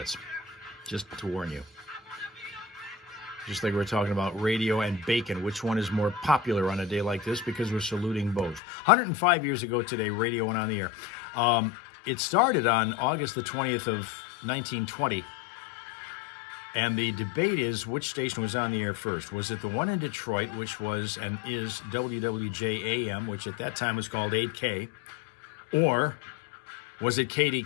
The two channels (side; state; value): right; drops out; at 8.6 s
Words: just to warn you. Just like we're talking about radio and bacon, which one is more popular on a day like this, because we're saluting both. 105 years ago today, radio went on the air. It started on August the 20th of 1920. And the debate is which station was on the air first. Was it the one in Detroit, which was and is WWJAM, which at that time was called 8K, or was it